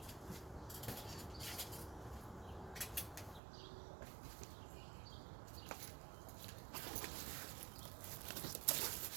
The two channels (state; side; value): drops out; left; at 3.4 s